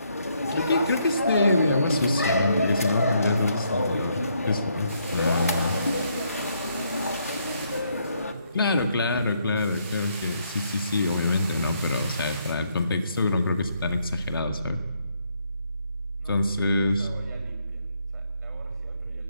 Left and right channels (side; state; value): both; inverted; correlation -0.73